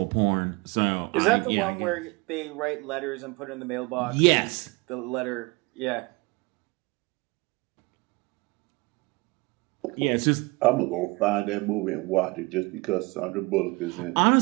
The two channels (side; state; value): left; quieter; 25.7 dB